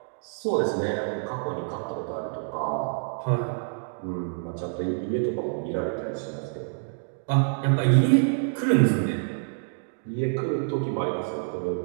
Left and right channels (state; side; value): silent; left; digital silence